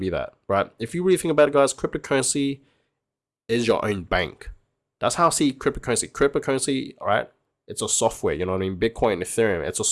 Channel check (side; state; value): both; identical; correlation 1.00